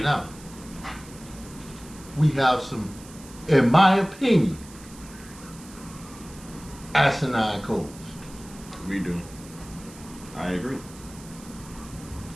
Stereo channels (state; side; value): noise; right; hiss, 19 dB below the sound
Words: now. We have some, in my opinion, asinine codes. We do. I agree.